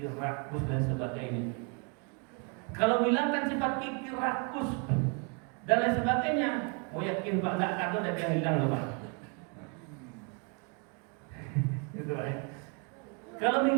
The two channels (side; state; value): left; quieter; 35.1 dB